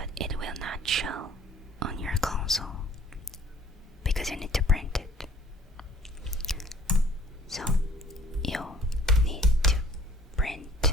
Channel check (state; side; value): normal; both; correlation 0.54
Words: it will not show on your console because you need to print it. So you need to